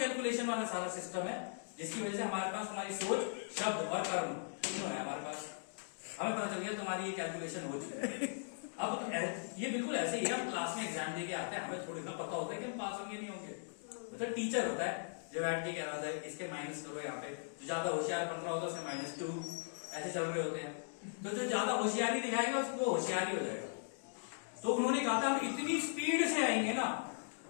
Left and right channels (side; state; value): right; silent; digital silence